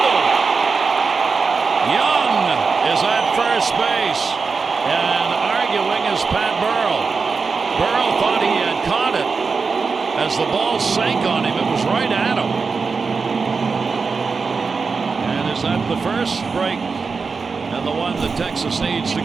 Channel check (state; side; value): quieter; left; 4.8 dB